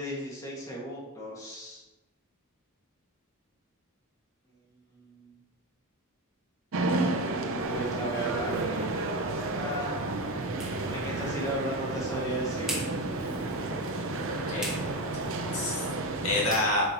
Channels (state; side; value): normal; both; correlation 0.16